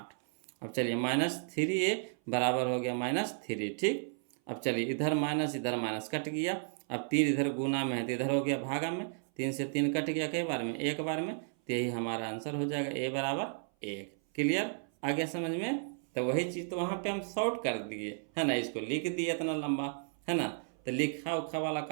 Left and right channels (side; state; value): left; silent; 55 dB below the other